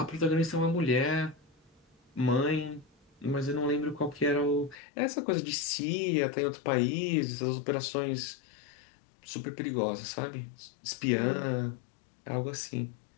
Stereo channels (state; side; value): drops out; right; at 4.8 s